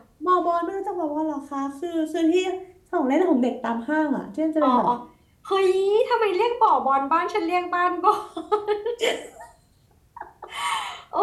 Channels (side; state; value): both; identical; correlation 1.00